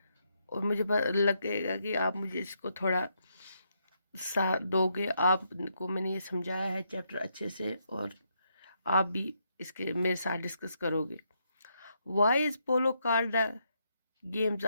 और मुझे लगेगा कि आप मुझे इसको थोड़ा साथ दोगे। आपको मैंने ये समझाया है चैप्टर अच्छे से और आप भी इसके मेरे साथ डिस्कस करोगे। Why is polo called the games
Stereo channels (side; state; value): both; inverted; correlation -0.78